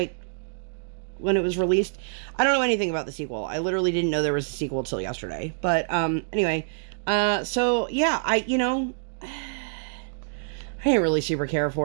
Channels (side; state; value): left; silent; digital silence